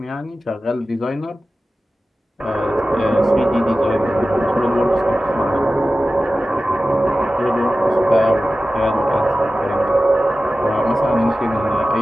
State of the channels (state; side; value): normal; both; correlation 0.95